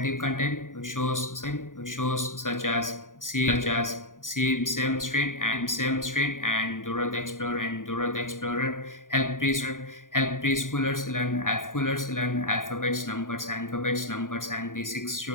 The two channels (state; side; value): late; right; 0.89 ms